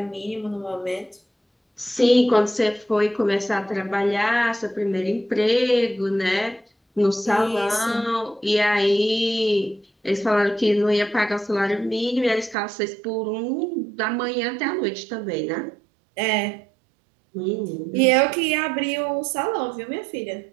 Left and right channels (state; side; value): drops out; left; at 12.6 s